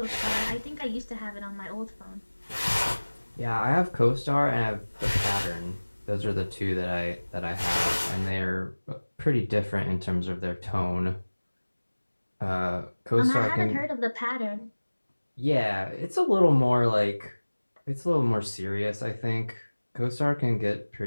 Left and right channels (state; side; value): inverted; both; correlation -1.00